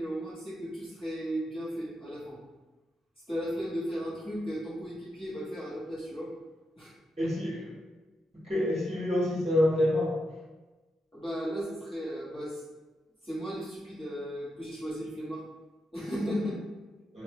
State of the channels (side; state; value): both; normal; correlation 0.85